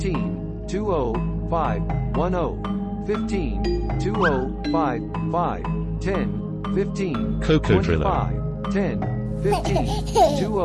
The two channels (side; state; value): both; identical; correlation 1.00